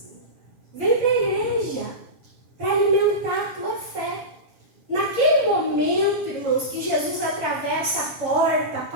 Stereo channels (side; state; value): left; late; 7.3 ms